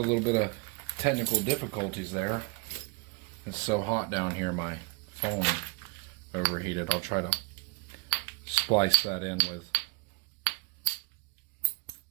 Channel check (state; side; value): quieter; left; 31.0 dB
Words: little bit of technical difficulties there. It's so hot down here, my phone overheated. I'll try to splice that in